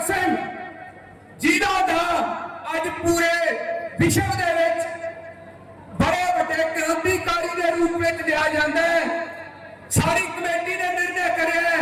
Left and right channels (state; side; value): identical; both; correlation 1.00